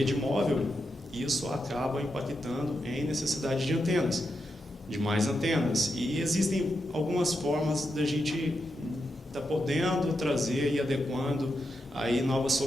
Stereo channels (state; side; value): normal; both; correlation 0.86